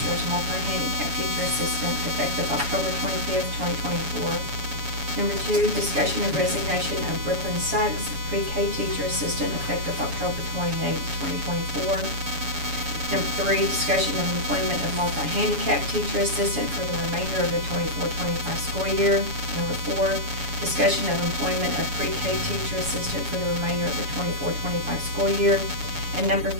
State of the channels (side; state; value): left; late; 7.1 ms